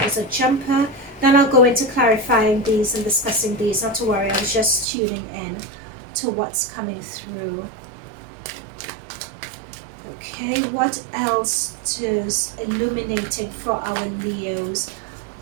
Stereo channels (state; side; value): drops out; left; at 4.9 s